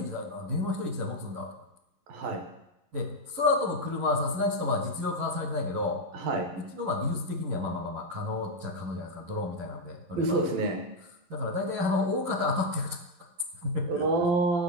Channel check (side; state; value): left; late; 11 ms